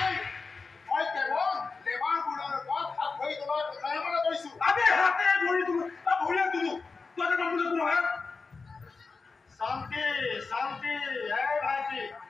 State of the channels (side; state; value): right; quieter; 4.4 dB